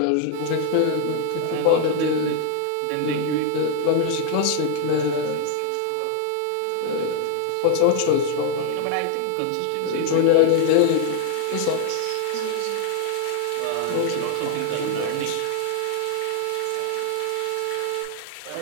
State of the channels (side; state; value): both; different; correlation 0.00